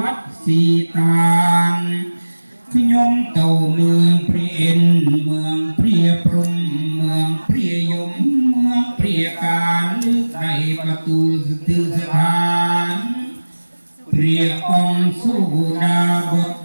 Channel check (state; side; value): inverted; both; correlation -1.00